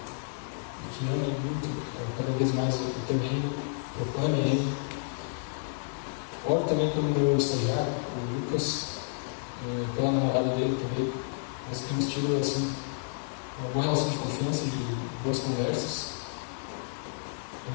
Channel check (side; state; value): right; silent; digital silence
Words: que amem muito, cada vez mais o teu reino, proclamem ele. Oro também pelo meu estagiário, o Lucas, pela namorada dele também. Nós temos tido assim, uma boa relação de confiança, de boas conversas.